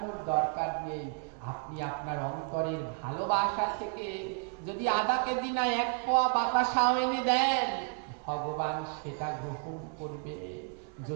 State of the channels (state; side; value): quieter; left; 39.0 dB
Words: দরকার নেই। আপনি আপনার অন্তরের ভালোবাসা থেকে যদি আধা কেজি না 1 পোয়া বাতাসাও এনে দেন, ভগবান সেটা গ্রহণ করবে,